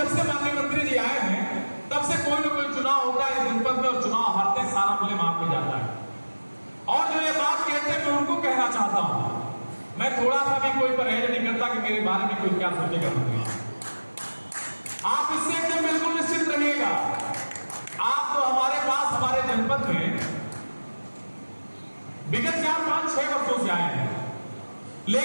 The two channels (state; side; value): inverted; both; correlation -1.00